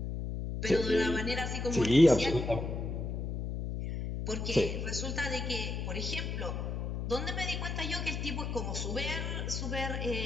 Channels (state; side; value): noise; left; hum, 3 dB below the sound